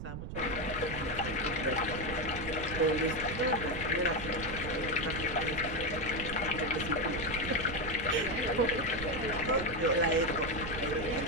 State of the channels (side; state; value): right; noise; rumble, 8 dB below the sound